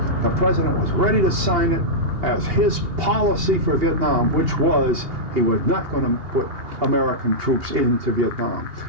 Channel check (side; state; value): left; late; 2.8 ms